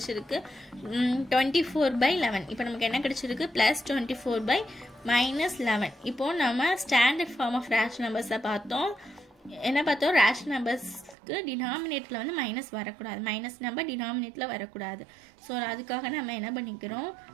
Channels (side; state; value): left; drops out; at 11.2 s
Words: 24/11. இப்போ நமக்கு என்ன கிடைச்சிருக்கு +24/-11. இப்போ நம்ம ஸ்டாண்டர்ட் ஃபார்ம் ஆஃப் ரேஷனல் நம்பர்ஸை பார்த்தோம். என்ன பார்த்தோம், ரேஷனல் நம்பர்ஸ்க்கு டினாமினேட்டர்ல வந்து மைனஸ் வரக்கூடாது, மைனஸ் நம்பர் டினாமினேட்டர்ல வரக்கூடாது. ஸோ அதுக்காக நம்ம என்ன பண்ணிக்கிறோம்,